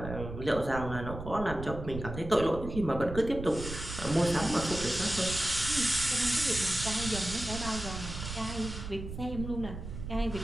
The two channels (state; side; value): noise; right; rumble, 8 dB below the sound